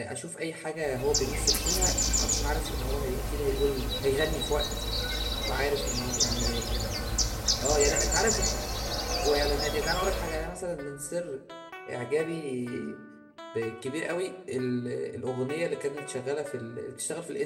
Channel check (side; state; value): both; identical; correlation 1.00